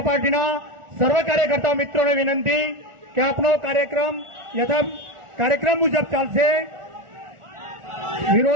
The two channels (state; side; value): late; left; 1.4 ms